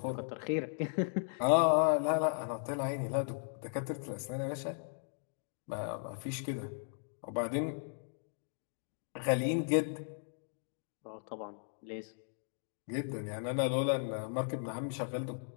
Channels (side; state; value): right; silent; digital silence